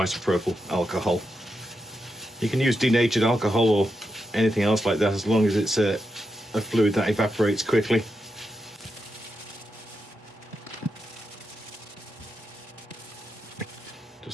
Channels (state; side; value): normal; both; correlation 0.86